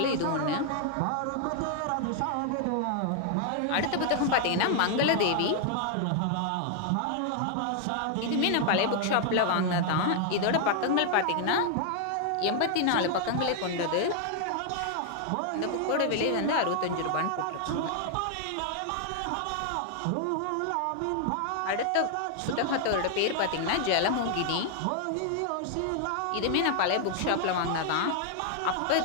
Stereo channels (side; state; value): both; different; correlation 0.00